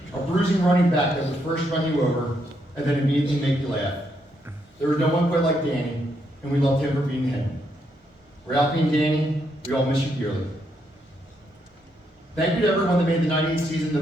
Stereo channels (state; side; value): normal; both; correlation 0.77